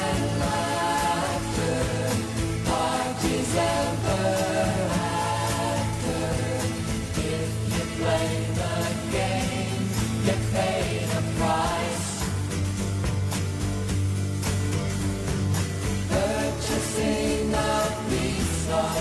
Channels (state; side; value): identical; both; correlation 1.00